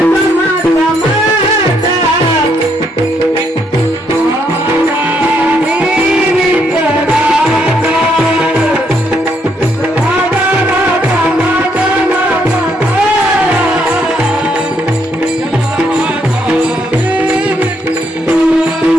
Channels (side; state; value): both; normal; correlation 0.73